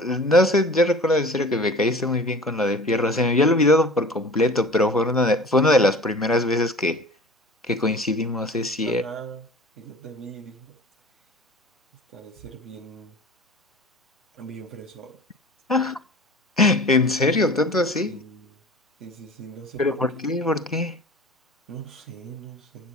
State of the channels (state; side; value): normal; both; correlation 0.42